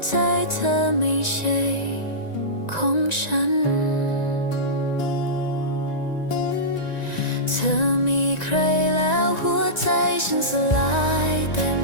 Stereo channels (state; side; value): late; right; 1.9 ms